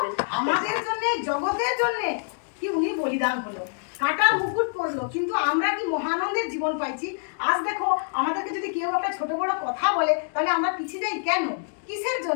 আমাদের জন্য, জগতের জন্য কি উনি বলিদান হলো, কাটার মুকুট পড়লো, কিন্তু আমরা কি মহানন্দের জীবন পাইছি। আজ দেখো আমাদেরকে যদি কেউ একটা ছোট বড় কথা বলে তাহলে আমরা পিছিয়ে যাই কেন, কিসের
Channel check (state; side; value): silent; right; 61 dB below the other